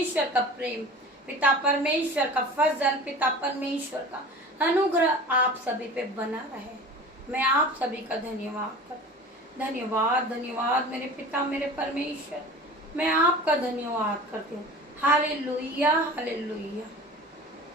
का प्रेम, पिता परमेश्वर का फजल, पिता परमेश्वर का अनुग्रह आप सभी पे बना रहे। मैं आप सभी का धन्यवाद करती हूँ। धन्यवाद मेरे पिता मेरे परमेश्वर। मैं आपका धन्यवाद करती हूँ। Hallelujah hallelujah.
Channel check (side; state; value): both; normal; correlation 0.38